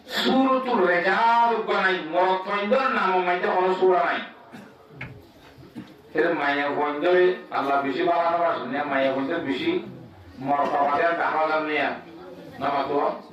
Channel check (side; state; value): both; identical; correlation 1.00